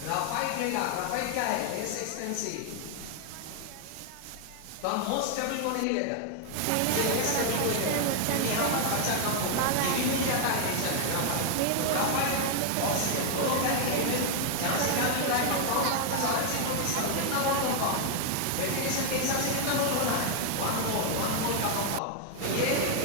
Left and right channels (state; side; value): different; both; correlation 0.00